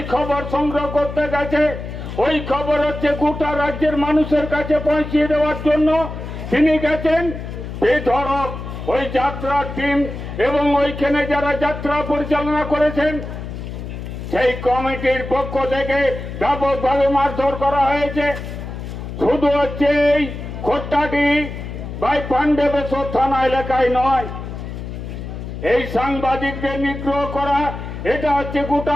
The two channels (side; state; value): left; noise; hum, 8 dB below the sound